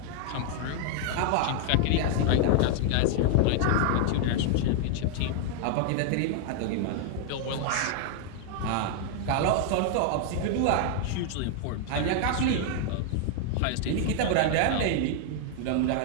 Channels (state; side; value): different; both; correlation 0.00